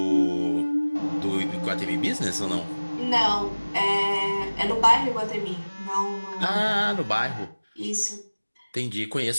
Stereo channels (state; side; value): inverted; both; correlation -1.00